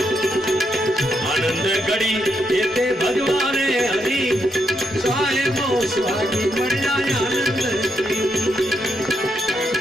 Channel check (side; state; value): both; normal; correlation 0.79